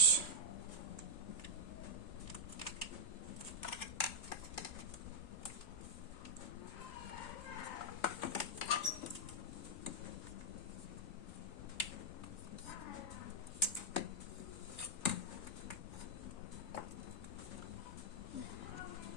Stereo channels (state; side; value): late; right; 3.4 ms